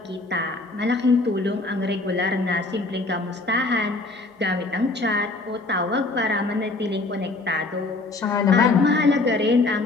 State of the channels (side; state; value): right; quieter; 3.3 dB